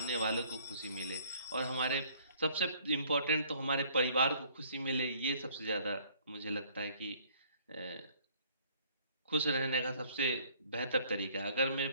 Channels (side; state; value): both; inverted; correlation -0.59